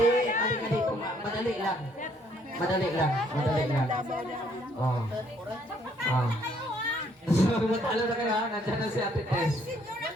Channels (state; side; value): normal; both; correlation 0.66